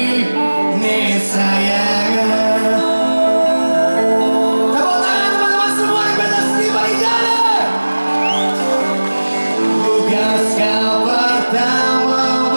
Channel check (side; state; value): both; inverted; correlation -1.00